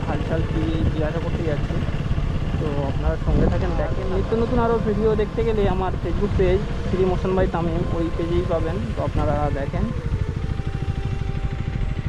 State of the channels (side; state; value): both; identical; correlation 1.00